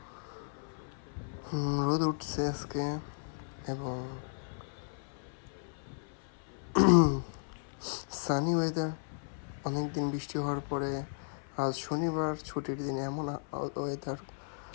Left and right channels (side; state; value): right; silent; 55 dB below the other